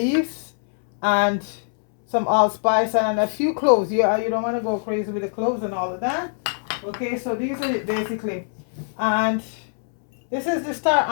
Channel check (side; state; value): right; silent; 64 dB below the other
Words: and some allspice and a few cloves. You don't want to go crazy with the cloves and all of that. Okay, so these are it basically, and this is the star